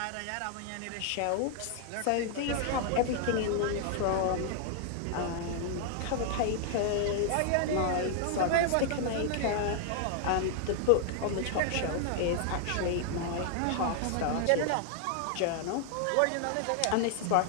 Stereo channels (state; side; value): different; both; correlation 0.00